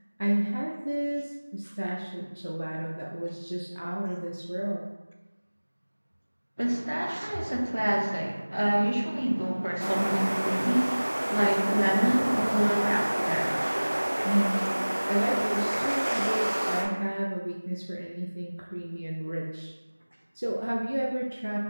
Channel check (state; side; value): inverted; both; correlation -1.00